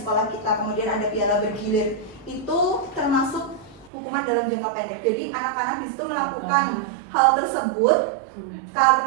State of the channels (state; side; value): drops out; left; at 3.9 s